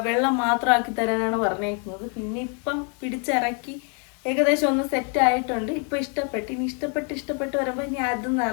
വെള്ളം മാത്രമാക്കി തരാനാണ് പറഞ്ഞേക്കുന്നത്. പിന്നെ ഇപ്പം പിടിച്ചിറക്കി ഏകദേശം ഒന്ന് സെറ്റ് ആയിട്ടുണ്ട്. ഇപ്പം ഇഷ്ടപ്പെട്ട്, ഇനി ഇഷ്ടപ്പെട്ട് വരുമ്പോൾ ഇനി അതൊന്നും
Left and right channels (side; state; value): right; quieter; 39.0 dB